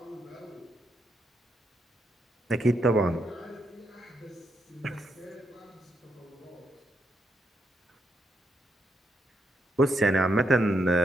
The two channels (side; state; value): both; normal; correlation 0.78